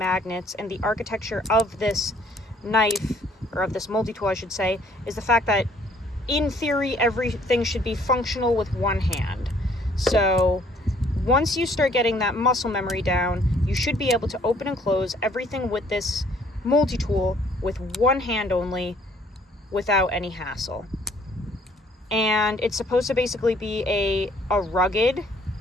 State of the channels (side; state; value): both; normal; correlation 0.61